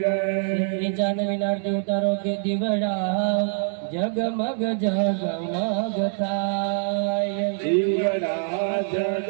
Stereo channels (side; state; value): left; silent; 62 dB below the other